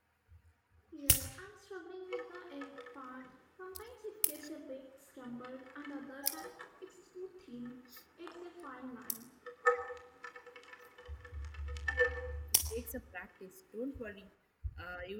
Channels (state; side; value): identical; both; correlation 1.00